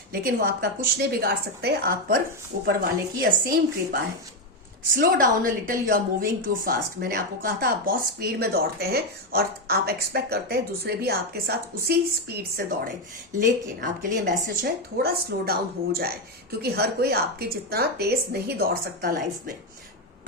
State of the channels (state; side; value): normal; both; correlation 0.08